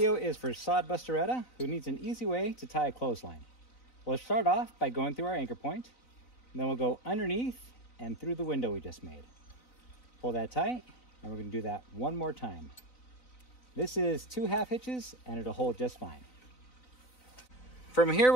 is for Sod Busteretta, who needs an easy way to tie a clothesline. We'll start off by going through our anchor point, and then we'll go underneath and through the window we just made. Pull that tight, and we're going to do that one more time. This is 2 half hitches, and it'll hold just fine. From here,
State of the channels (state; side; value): late; right; 4.0 ms